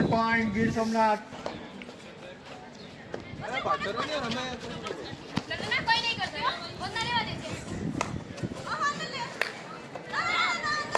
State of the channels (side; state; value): both; identical; correlation 1.00